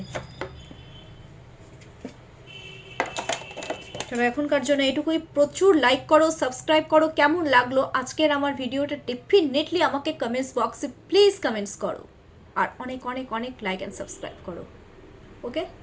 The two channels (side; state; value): both; identical; correlation 1.00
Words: চলো এখনকার জন্য এটুকুই, প্রচুর লাইক করো, সাবস্ক্রাইব করো। কেমন লাগলো আজকের আমার ভিডিওটা ডেফিনেটলি আমাকে কমেন্টস বক্সে প্লিজ কমেন্টস করো, আর অনেক অনেক অনেক লাইক অ্যান্ড সাবস্ক্রাইব করো। ওকে,